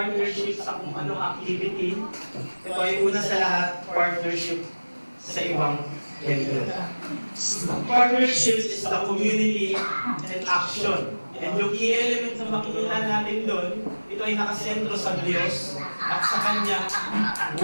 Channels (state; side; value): inverted; both; correlation -1.00